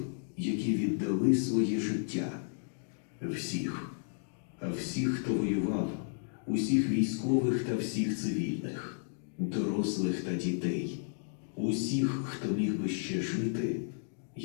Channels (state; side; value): silent; right; digital silence